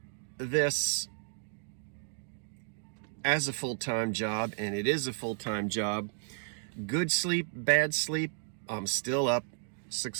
this as a full-time job, and it is a full-time job. Good sleep, bad sleep, I'm still up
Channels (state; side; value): silent; left; digital silence